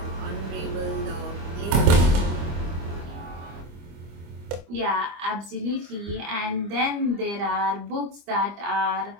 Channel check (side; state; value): left; late; 25 ms